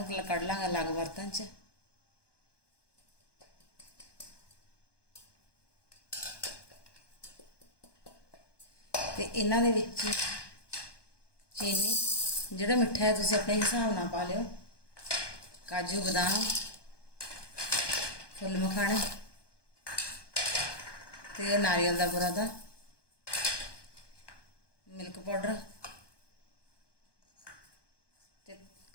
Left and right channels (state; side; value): late; right; 1.2 ms